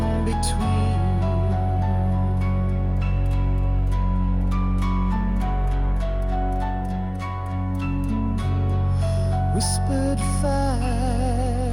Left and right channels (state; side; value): identical; both; correlation 1.00